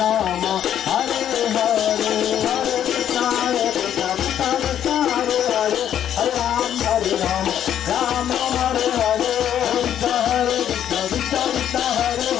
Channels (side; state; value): right; quieter; 10.2 dB